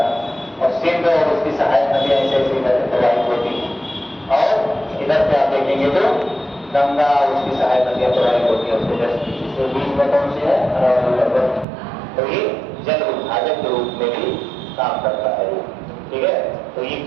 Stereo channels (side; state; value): left; drops out; at 11.7 s